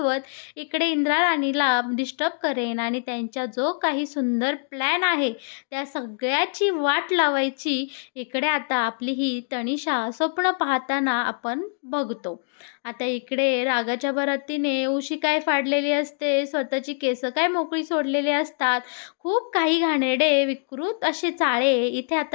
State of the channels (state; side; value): silent; right; digital silence